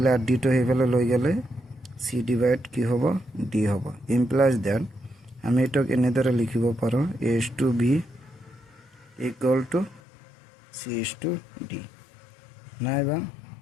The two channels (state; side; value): drops out; right; at 10.0 s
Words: আৰু ডিটো সেইফালে লৈ গ'লে চি ডিভাইড কি হ'ব? ডি হ'ব। ইমপ্লাইজ দেট আমি এইটোক এনেদৰে লিখিব পাৰোঁ A/B ইকুৱেল টু C/D। নাইবা